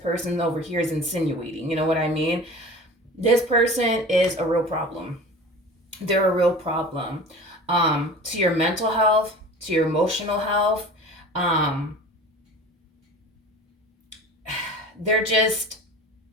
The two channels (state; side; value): normal; both; correlation 0.38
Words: over here is insinuating. You know what I mean? This person is a real problem. They're a real problem. To your mental health, to your emotional health. They're just